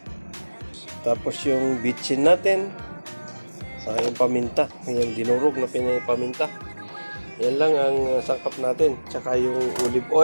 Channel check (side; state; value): both; inverted; correlation -1.00